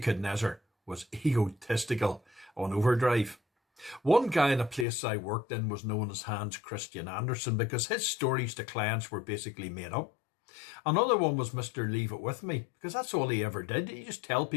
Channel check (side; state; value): right; drops out; at 4.9 s